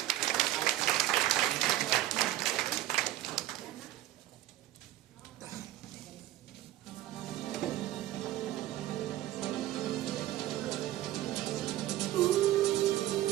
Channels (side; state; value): left; quieter; 14.4 dB